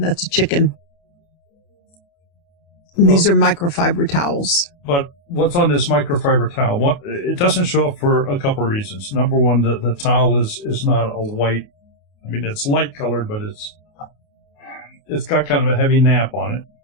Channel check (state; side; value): late; right; 28 ms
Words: a chicken. These are microfiber towels. But what's on this microfiber towel? It doesn't show up for a couple of reasons. Number one, the towel is not a white. I mean, it's light colored, but it's got kind of a heavy nap on it.